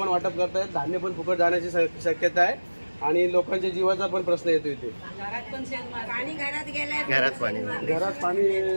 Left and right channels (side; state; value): both; inverted; correlation -1.00